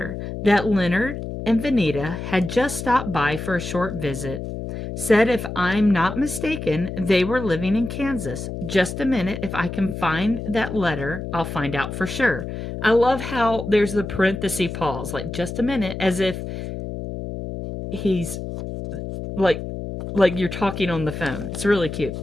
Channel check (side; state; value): left; noise; hum, 7 dB below the sound